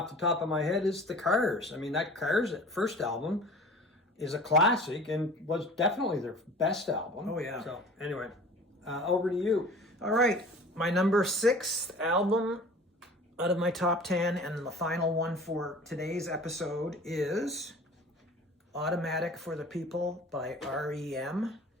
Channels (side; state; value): both; normal; correlation 0.43